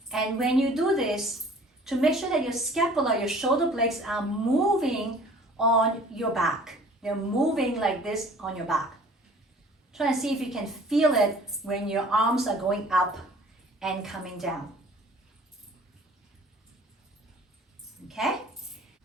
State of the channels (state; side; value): normal; both; correlation 0.50